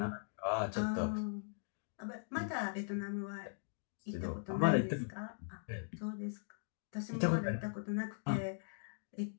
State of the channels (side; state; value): right; silent; digital silence